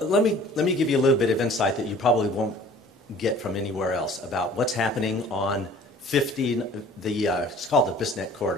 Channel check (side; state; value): both; normal; correlation 0.50